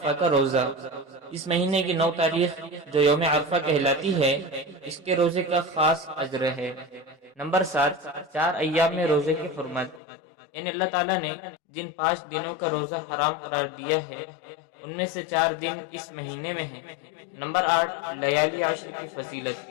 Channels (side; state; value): right; drops out; at 10.0 s